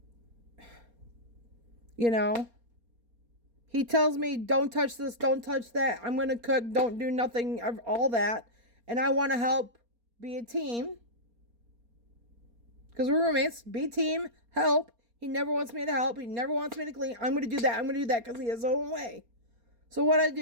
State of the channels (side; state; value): left; late; 4.3 ms